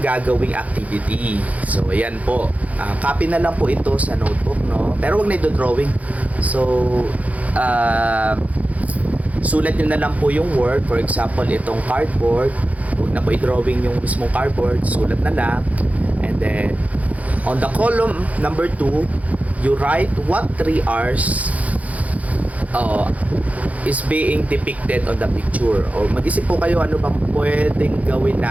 gagawing activity. So, ayan po. Copy na lang po ito sa notebook, Pero wag na ito drawing. So, sulat nyo na lang po yung word. For example, itong cardboard. Huwag na po i-drawing yung mismong cardboard. Sulat na lang. And then, on the column number 2, you write what 3 R's is being depicted on the picture. O mag-isip po kayo ano bang pwedeng gawin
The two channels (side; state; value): left; late; 0.070 ms